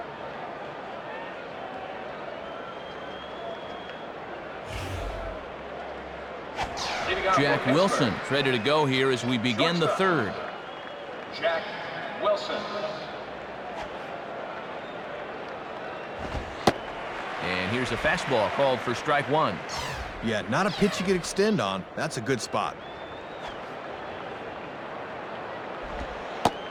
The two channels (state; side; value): identical; both; correlation 1.00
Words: Jack Wilson ready to go here as we begin the third. Jack Wilson. And here's a fastball called for strike one. Yeah, not a pitch you could extend on. That's a good spot.